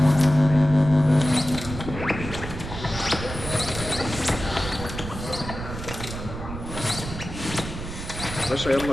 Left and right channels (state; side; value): noise; right; rumble, 9 dB below the sound